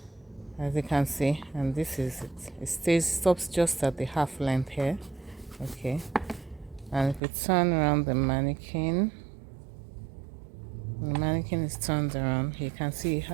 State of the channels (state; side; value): drops out; left; at 7.2 s